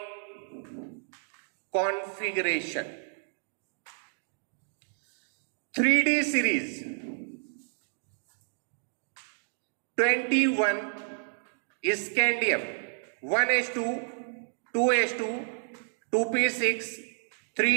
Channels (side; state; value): left; silent; digital silence